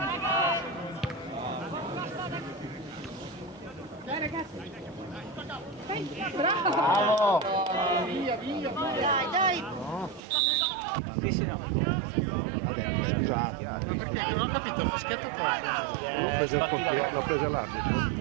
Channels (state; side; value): drops out; left; at 10.2 s